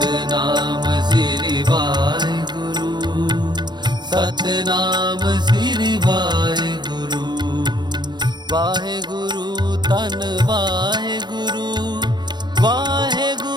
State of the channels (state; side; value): late; left; 0.21 ms